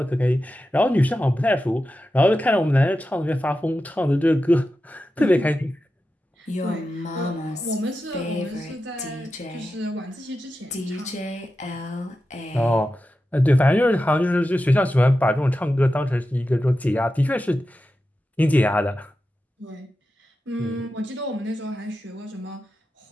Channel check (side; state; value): both; normal; correlation 0.91